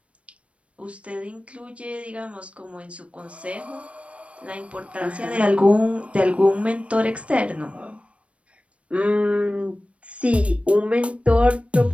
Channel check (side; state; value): left; late; 0.062 ms